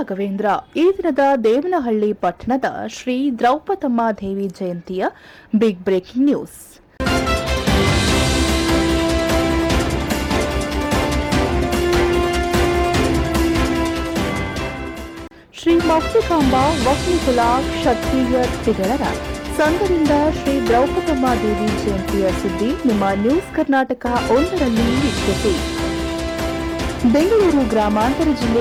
ಈ ದಿನದ ದೇವನಹಳ್ಳಿ ಪಟ್ಟಣದ ಶ್ರೀ ದ್ರೌಪದಮ್ಮ ದೇವಿ ಜಯಂತಿಯ ಬಿಗ್ ಬ್ರೇಕಿಂಗ್ ನ್ಯೂಸ್. ಶ್ರೀ ಮೌಕ್ತಿಕಾಂಬ ವಕ್ನಿಕುಲ ಕ್ಷತ್ರಿಯ ತಿಗಳರ ಸಂಘದಿಂದ ಶ್ರೀ ದ್ರೌಪದಮ್ಮ ದೇವಿ ಜಯಂತಿಯ ಸುದ್ದಿ ನಿಮ್ಮ ನ್ಯೂಸ್ ಕರ್ನಾಟಕ 1ರಲ್ಲಿ ವೀಕ್ಷಿಸಿ. ಬೆಂಗಳೂರು ಗ್ರಾಮಾಂತರ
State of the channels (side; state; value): both; identical; correlation 1.00